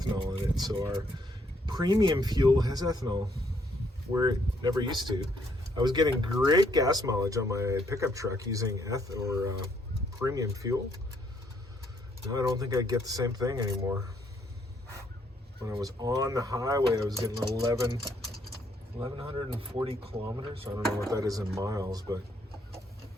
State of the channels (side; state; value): both; normal; correlation 0.70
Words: in it. So our premium fuel has ethanol, where it never used to. I was getting great gas mileage on my pickup truck using premium fuel. Now I don't think I get the same thing anymore. When I was on the highway, I was getting 1,140 kilometers. I don't know what that is in miles, but